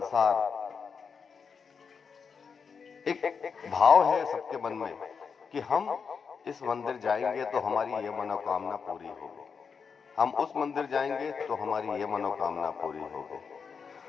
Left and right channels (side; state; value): right; quieter; 5.9 dB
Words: एक भाव है सबके मन में कि हम इस मंदिर जाएंगे तो हमारी ये मनोकामना पूरी होगी, हम उस मंदिर जाएंगे तो हमारी ये मनोकामना पूरी होगी,